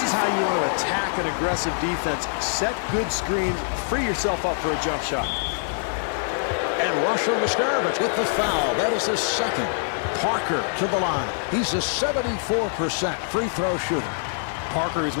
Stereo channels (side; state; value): right; silent; digital silence